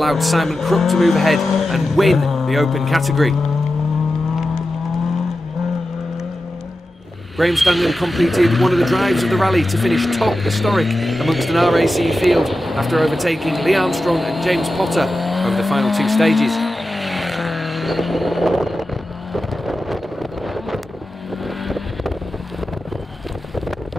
Simon Crook to move ahead and win the open category. Graham Standen completed one of the drives of the rally to finish top historic amongst an R.A.C. field after overtaking Lee Armstrong and James Potter over the final 2 stages.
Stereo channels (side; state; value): both; normal; correlation 0.92